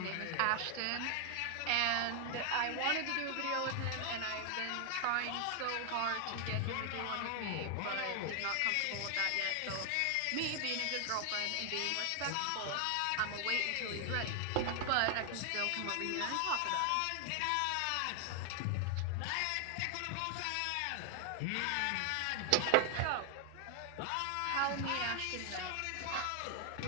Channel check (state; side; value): different; both; correlation 0.00